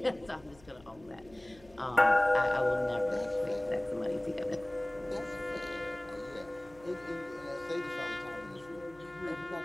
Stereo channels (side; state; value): left; noise; hum, 25 dB below the sound